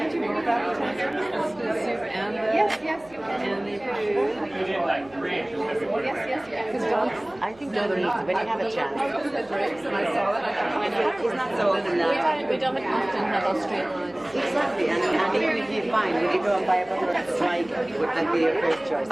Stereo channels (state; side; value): noise; right; hum, 26 dB below the sound